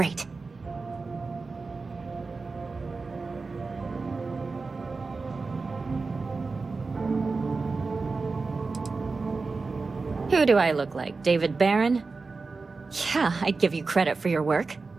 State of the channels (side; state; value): left; quieter; 4.1 dB